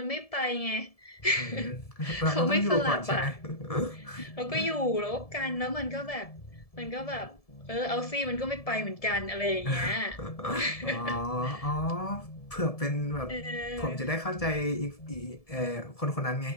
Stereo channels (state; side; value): late; right; 1.7 ms